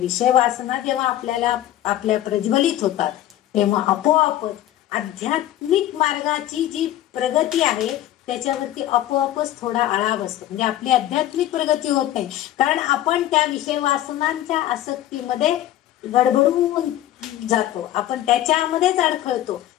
वासना जेव्हा आपल्या प्रज्वलित होतात तेव्हा आपोआपच आध्यात्मिक मार्गाची जी प्रगती आहे त्याच्यावरती आपोआपच थोडा आळा बसतो. म्हणजे आपली आध्यात्मिक प्रगती होत नाही, कारण आपण त्या विषय वासनांच्या आसक्तीमध्ये गडबडून जातो, आपण त्याच्यामध्येच अडखळतो,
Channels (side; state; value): right; quieter; 13.4 dB